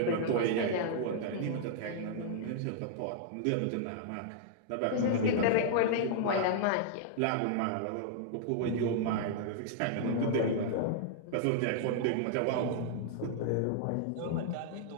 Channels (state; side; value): different; both; correlation -0.01